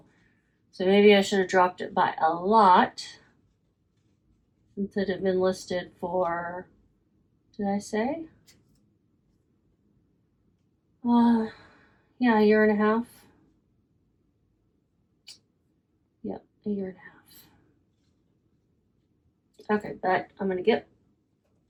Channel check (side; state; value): both; identical; correlation 1.00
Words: So maybe I should have dropped it by a lot since it had been listed for, did I say? Yeah, a year and a half. Yep, a year and a half. Okay, but I'm gonna get